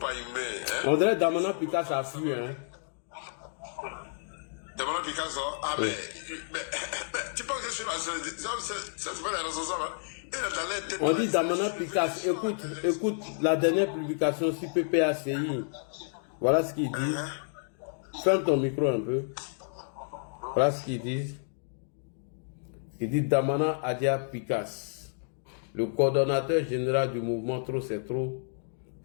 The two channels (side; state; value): right; silent; digital silence